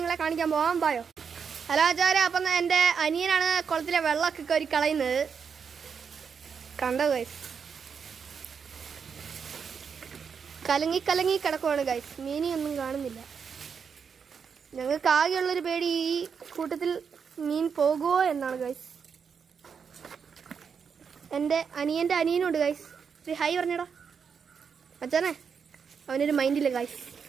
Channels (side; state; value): left; quieter; 6.4 dB